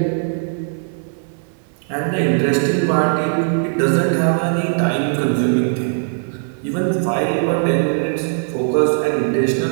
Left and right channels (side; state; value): left; silent; digital silence